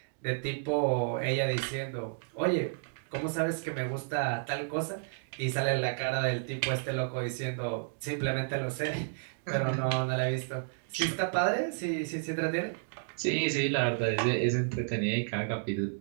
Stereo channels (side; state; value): left; silent; digital silence